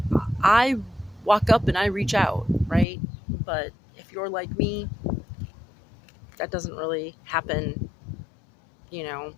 I walk up and I reach out, right? But if you're like me, that doesn't really happen,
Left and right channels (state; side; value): drops out; right; at 2.9 s